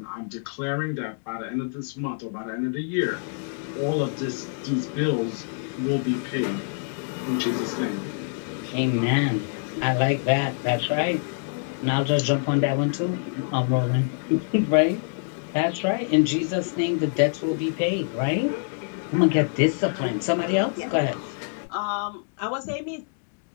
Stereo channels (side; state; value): right; silent; digital silence